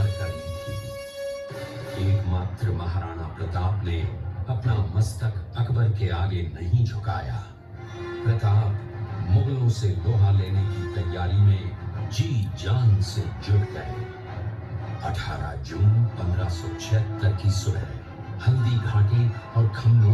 कर ली थी। एकमात्र महाराणा प्रताप ने अपना मस्तक अकबर के आगे नहीं झुकाया। प्रताप मुगलों से लोहा लेने की तैयारी में जी जान से जुट गए। 18 जून 1576 की सुबह हल्दी घाटी और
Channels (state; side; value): identical; both; correlation 1.00